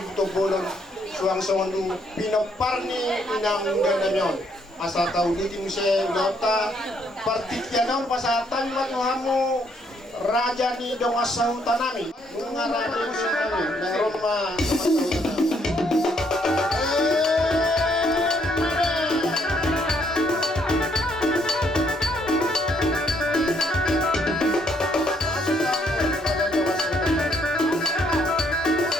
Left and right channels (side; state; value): both; normal; correlation 0.70